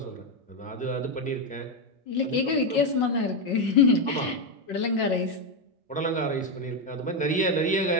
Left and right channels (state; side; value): normal; both; correlation 0.06